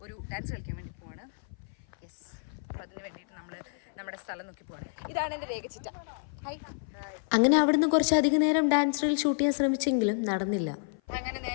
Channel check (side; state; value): right; silent; 55 dB below the other